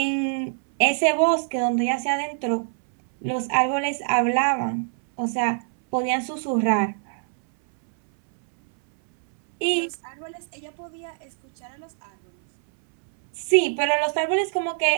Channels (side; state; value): left; silent; 63 dB below the other